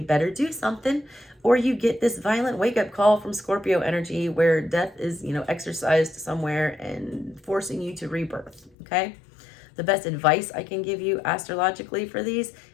better do something, or you get this violent wake up call from Scorpio energy where death is, you know, exercised somewhere and forcing you to rebirth. Okay. The best advice I can give you astrologically for these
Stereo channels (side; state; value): right; drops out; at 8.7 s